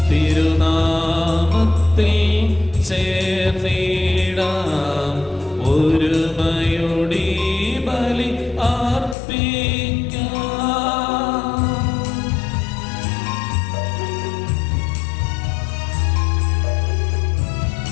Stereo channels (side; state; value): right; drops out; at 9.2 s